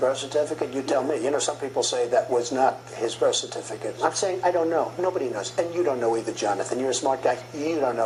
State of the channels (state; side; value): identical; both; correlation 1.00